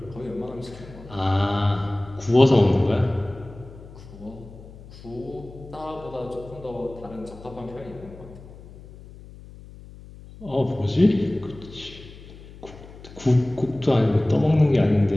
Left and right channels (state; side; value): noise; left; hum, 18 dB below the sound